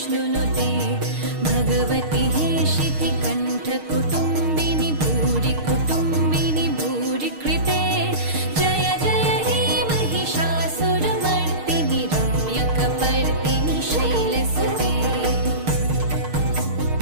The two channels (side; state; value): left; late; 6.5 ms